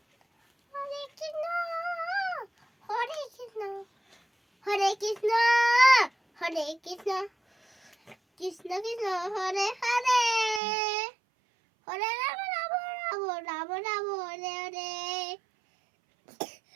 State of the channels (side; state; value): left; drops out; at 10.6 s